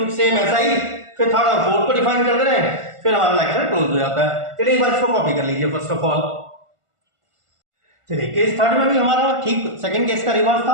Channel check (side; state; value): left; late; 1.4 ms